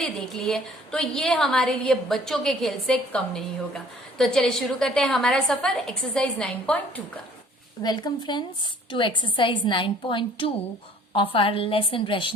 देख ली है, तो ये हमारे लिए बच्चों के खेल से कम नहीं होगा। तो चलिए शुरू करते हैं हमारा सफर एक्सरसाइज 9.2 का। Welcome friends to exercise 9.2 of our lesson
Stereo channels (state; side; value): normal; both; correlation 0.56